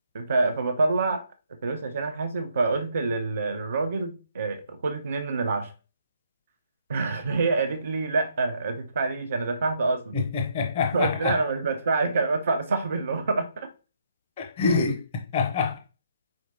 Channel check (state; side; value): inverted; both; correlation -0.71